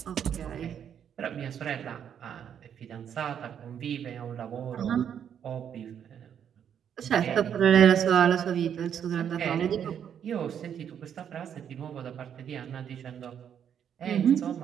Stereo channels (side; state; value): left; quieter; 8.7 dB